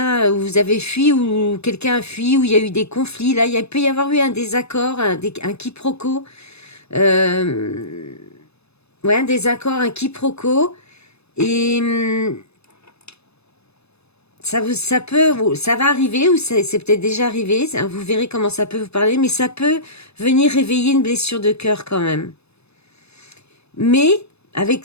vous avez fui ou quelqu'un a fui ou il y a eu des conflits. Là, il peut y avoir eu un désaccord, un quiproquo. Euh, ouais, un désaccord, un quiproquo. Et ça va arriver ou c'est peut-être déjà arrivé. Vous verrez comment ça peut vous parler, mais ça peut venir réveiller une blessure de cœur quand même. Mais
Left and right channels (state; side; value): late; right; 0.79 ms